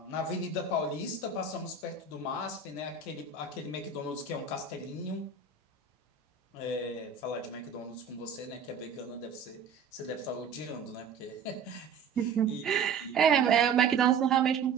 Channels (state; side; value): quieter; left; 5.5 dB